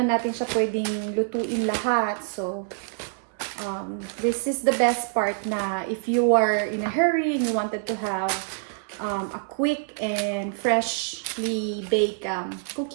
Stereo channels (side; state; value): left; silent; 61 dB below the other